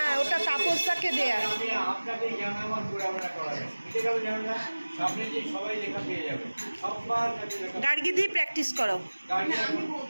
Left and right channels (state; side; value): inverted; both; correlation -1.00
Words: ওটা তাপসদাকে দেয়া। আমি আপনাকে জানাবার পুরাবেনা করাবেন, বুঝতে গেল? জানা সামনে যে সবাই লেখা পেয়ে যাবে, সববার কাছে লেখা। গার্গি দিয়ে প্র্যাকটিস করো। গাড়ি আমি